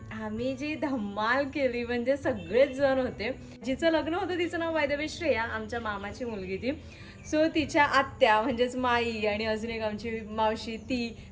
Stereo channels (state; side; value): identical; both; correlation 1.00